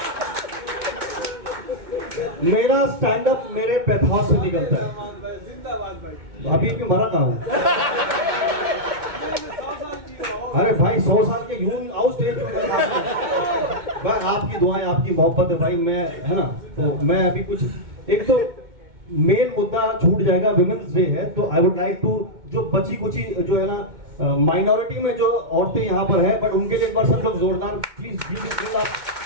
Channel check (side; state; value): left; late; 2.2 ms